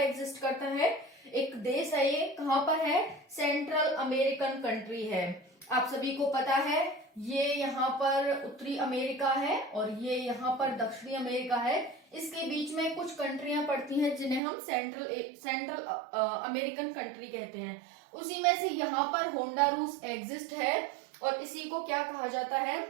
करता है? एक देश है ये। कहां पर है? सेंट्रल अमेरिकन कंट्री है। आप सभी को पता है ये यहाँ पर उत्तरी अमेरिका है और ये यहाँ पर दक्षिणी अमेरिका है। इसके बीच में कुछ कंट्रियां पड़ती हैं जिन्हें हम सेंट्रल अमेरिकन कंट्री कहते हैं। उसी में से यहाँ पर होंडुरास एग्जिस्ट है, और इसी को क्या कहा जाता है?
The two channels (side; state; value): left; drops out; at 14.4 s